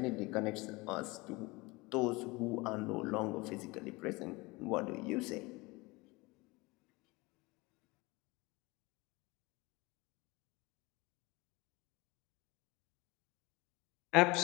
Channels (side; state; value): right; quieter; 23.7 dB